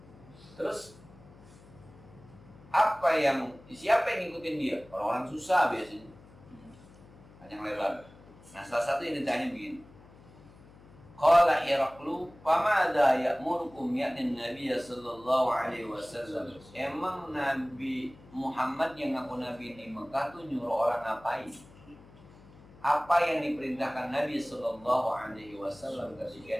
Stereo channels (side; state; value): left; noise; hum, 23 dB below the sound